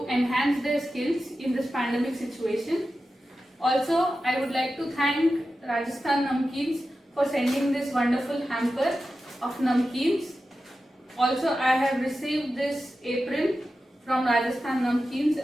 enhance their skills in this pandemic situation. Also, I would like to thank Rajasthan Namkeens for sending this wonderful hamper of namkeens. Also, I have received this apron from Rajasthan Namkeens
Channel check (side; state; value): both; normal; correlation 0.92